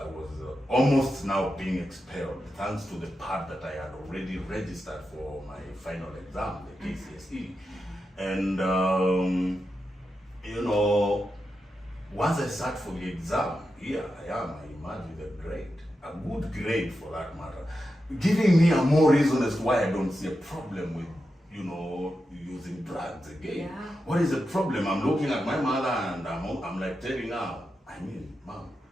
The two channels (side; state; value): both; normal; correlation 0.89